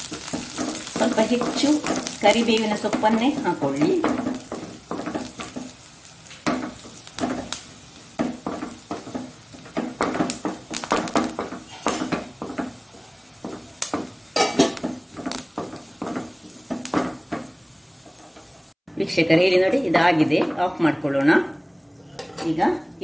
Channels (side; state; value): both; identical; correlation 1.00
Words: ಸ್ವಲ್ಪ ಹೆಚ್ಚು ಕರಿಬೇವಿನ ಸೊಪ್ಪನ್ನೇ ಹಾಕೊಳ್ಳಿ. ವೀಕ್ಷಕರೇ ಇಲ್ಲಿ ನೋಡಿ, ಇದಾಗಿದೆ. ಆಫ್ ಮಾಡ್ಕೊಳ್ಳೋಣ. ಈಗ